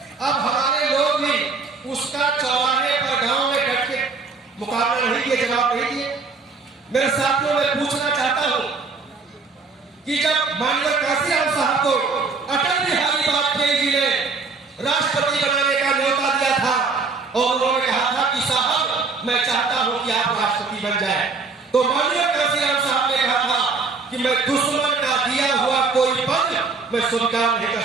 अब हमारे लोग भी उसका चौराहे पर गांव में बैठ के मुकाबला नहीं किए, जवाब नहीं दिए। मेरे साथियों मैं पूछना चाहता हूं कि जब माननीय काशीराम साहब को अटल बिहारी वाजपेयी जी ने राष्ट्रपति बनाने का न्योता दिया था और उन्होंने कहा था कि साहब मैं चाहता हूं कि आप राष्ट्रपति बन जाए, तो माननीय काशीराम साहब ने कहा था कि मैं दुश्मन का दिया हुआ कोई पद मैं स्वीकार नहीं कर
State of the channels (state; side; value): quieter; left; 4.4 dB